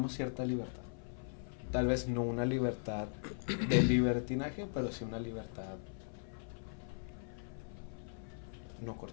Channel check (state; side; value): silent; right; 52 dB below the other